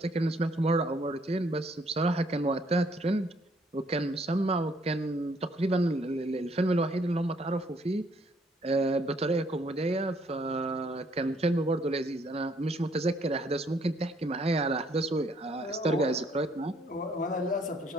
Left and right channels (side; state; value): both; normal; correlation 0.66